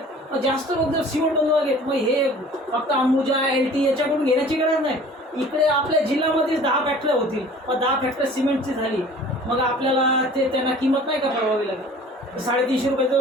मग जास्त लोक जर सिमेंट बनवायला मग हे फक्त अंबुजा LT याच्याकडून घेण्याची गरज नाही. इकडे आपल्या जिल्ह्यामध्ये 10 फॅक्टऱ्या होतील. मग 10 फॅक्टऱ्या सिमेंटची झाली, मग आपल्याला त्यांना किंमत नाही का भरावी लागेल. 350 रुपये जो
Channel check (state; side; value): normal; both; correlation 0.47